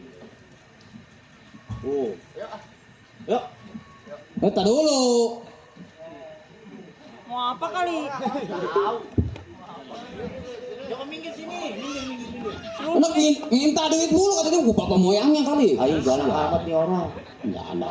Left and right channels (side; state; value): both; identical; correlation 1.00